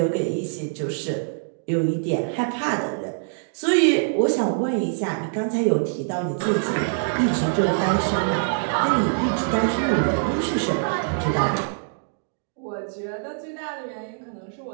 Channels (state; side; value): silent; left; digital silence